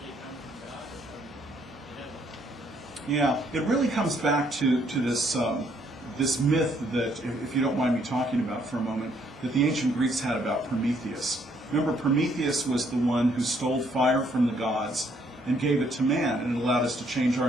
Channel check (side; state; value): both; normal; correlation 0.68